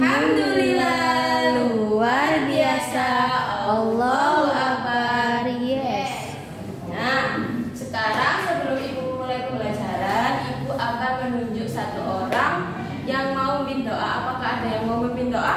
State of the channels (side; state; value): both; identical; correlation 1.00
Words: luar biasa. Allahu Akbar. Yes. Nah, sekarang sebelum Ibu mulai pembelajaran, Ibu akan menunjuk satu orang yang mau memimpin doa. Apakah ada yang mau memimpin